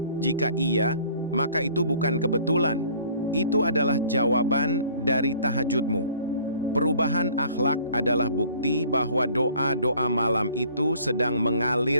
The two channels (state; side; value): inverted; both; correlation -0.54